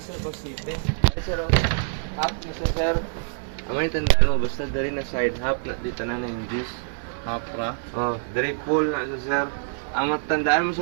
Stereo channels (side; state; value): left; silent; 56 dB below the other